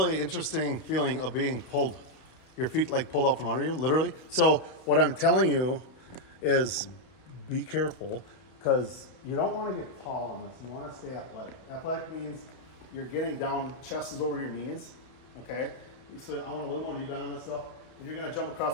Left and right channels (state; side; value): late; right; 31 ms